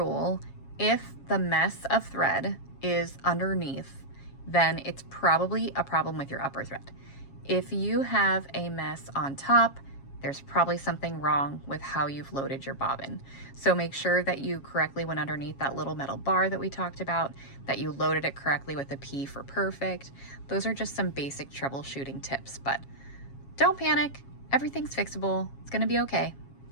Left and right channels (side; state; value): right; late; 7.3 ms